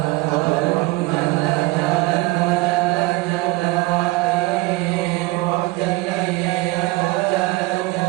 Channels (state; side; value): quieter; left; 21.6 dB